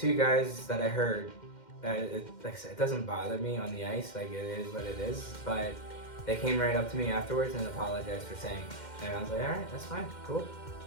guys that I heard. Like I said, it doesn't bother me on the ice. It is what it is. But they came right up to me afterwards and apologized for saying it. And I was like, all right, that's fine, cool.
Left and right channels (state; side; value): late; right; 2.1 ms